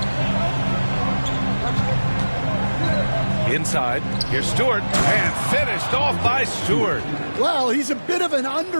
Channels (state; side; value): inverted; both; correlation -1.00